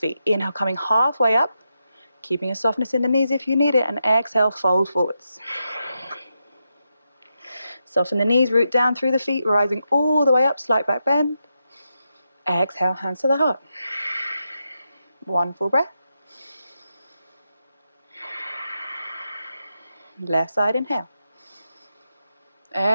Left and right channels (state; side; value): inverted; both; correlation -0.86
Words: Inhale, coming halfway up. Keeping a softness in the knees if you need it. And exhale, fold forwards. Soften the knees, root down through the feet, rising all the way up, slight back bend. Exhale, hands to the heart. One full breath. Left side, inhale.